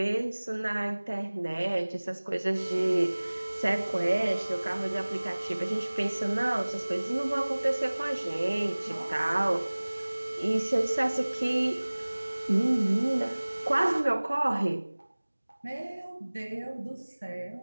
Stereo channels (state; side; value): inverted; both; correlation -1.00